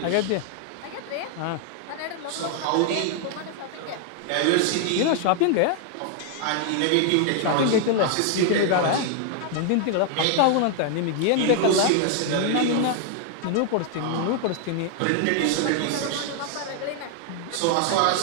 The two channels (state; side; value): different; both; correlation 0.00